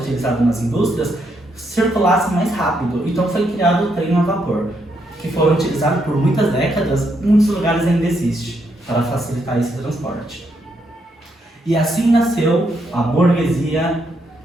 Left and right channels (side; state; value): both; normal; correlation 0.77